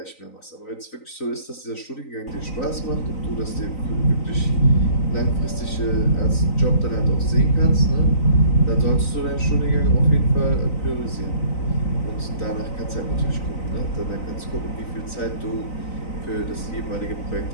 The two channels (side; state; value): right; late; 3.9 ms